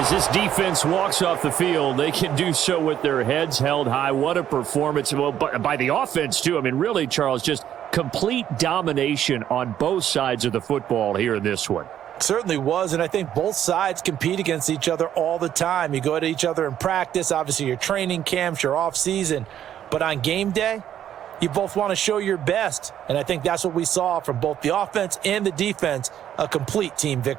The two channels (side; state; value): left; quieter; 10.5 dB